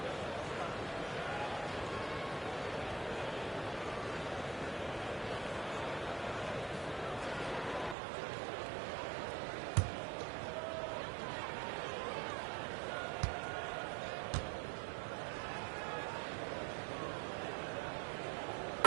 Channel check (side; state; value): left; drops out; at 8.0 s